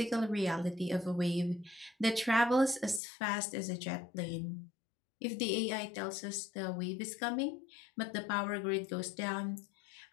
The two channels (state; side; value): drops out; right; at 3.0 s